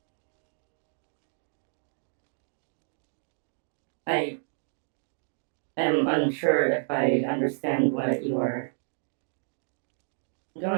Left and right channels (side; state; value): left; silent; digital silence